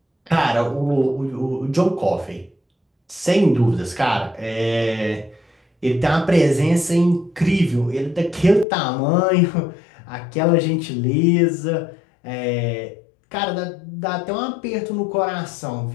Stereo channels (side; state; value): right; drops out; at 8.7 s